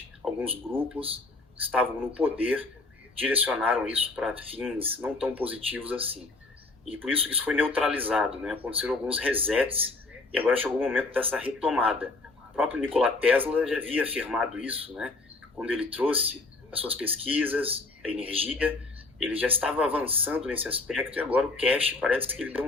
alguns grupos que estavam no poder direcionaram isso para fins não tão positivos assim. E por isso foi neutralizado, né? Aconteceram alguns resets e agora chegou o momento dessa retomada. O próprio Nikola Tesla já havia afirmado isso, né? Quando ele trouxe as suas pesquisas, a energia, ele já estava avançando nesse aspecto, e agora o Cash parece que ele deu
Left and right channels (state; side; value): quieter; right; 3.4 dB